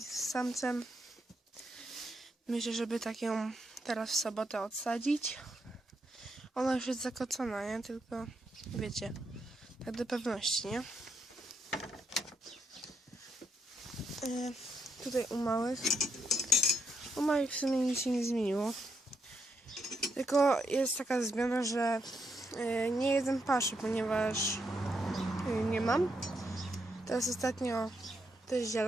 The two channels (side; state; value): both; normal; correlation 0.79